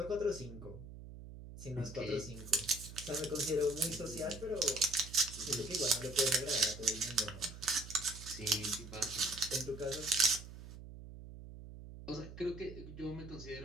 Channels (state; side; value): noise; right; hum, 13 dB below the sound